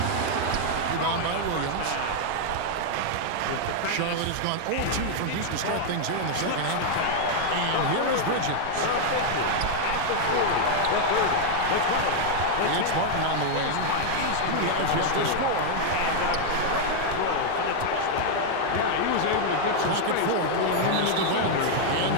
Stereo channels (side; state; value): both; different; correlation 0.00